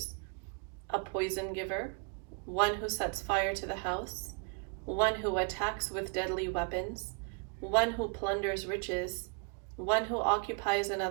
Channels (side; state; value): left; quieter; 38.0 dB